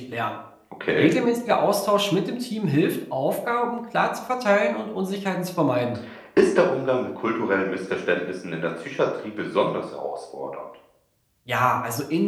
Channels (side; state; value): both; identical; correlation 1.00